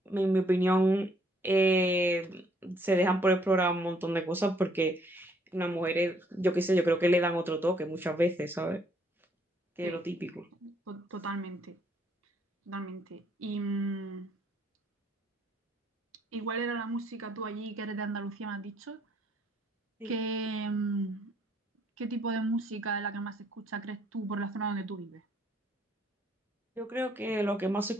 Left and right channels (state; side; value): normal; both; correlation 0.67